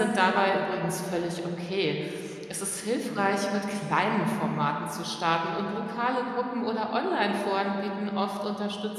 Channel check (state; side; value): identical; both; correlation 1.00